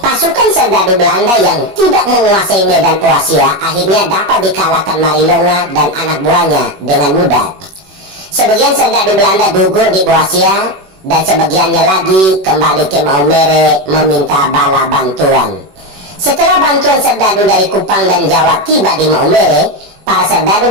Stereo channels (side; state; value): left; late; 21 ms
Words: Pasukan serdadu Belanda yang tidak menguasai medan Boasia akhirnya dapat dikalahkan Marilonga dan anak buahnya dengan mudah. Sebagian serdadu Belanda gugur di Boasia dan sebagiannya lagi kembali ke Maumere meminta bala bantuan. Setelah bantuan serdadu dari Kupang dan Jawa tiba di Maumere, para serdadu